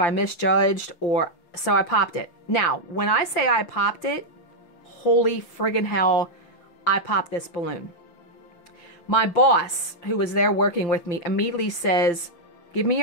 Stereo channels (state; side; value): late; right; 5.8 ms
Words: misjudged or... So I popped it. Now, when I say I popped it, holy friggin' hell, I popped this balloon. My boss, who was there working with me, immediately says, give me